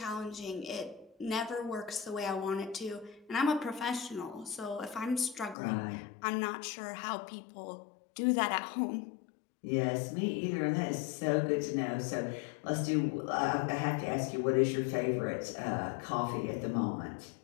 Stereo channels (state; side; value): drops out; right; at 5.6 s